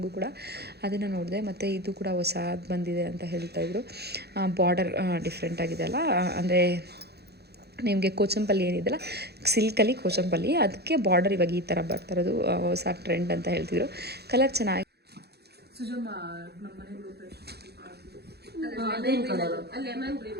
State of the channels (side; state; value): left; late; 0.47 ms